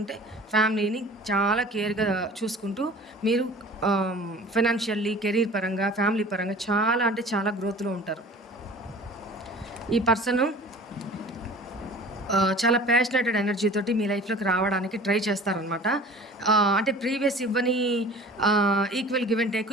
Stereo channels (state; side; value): normal; both; correlation 0.43